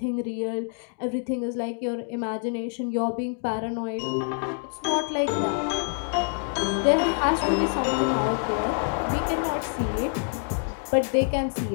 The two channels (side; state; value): right; silent; 56 dB below the other